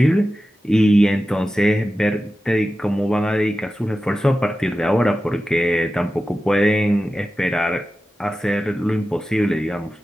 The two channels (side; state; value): both; normal; correlation 0.94